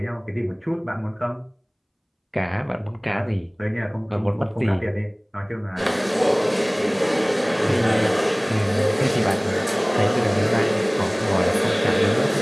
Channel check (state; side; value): identical; both; correlation 1.00